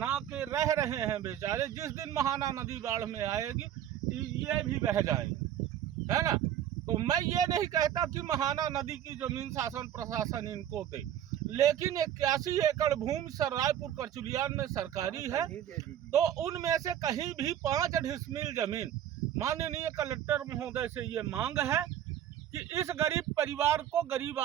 के रह रहे हैं बेचारे। जिस दिन महाना नदी बाढ़ में आएगी ये भी बह जाएंगे, है ना। तो मैं ये नहीं कहता कि महाना नदी की जमीन शासन प्रशासन इनको दे, लेकिन 81 एकड़ भूमि रायपुर करचुलियान में सरकारी है, तो उनमें से कहीं भी 5 डिसमिल जमीन, माननीय कलेक्टर महोदय से ये मांग है कि इस गरीब परिवार को, गरीब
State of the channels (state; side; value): quieter; left; 10.8 dB